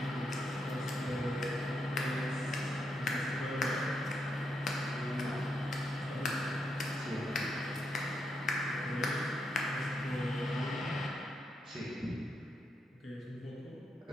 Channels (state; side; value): normal; both; correlation 0.80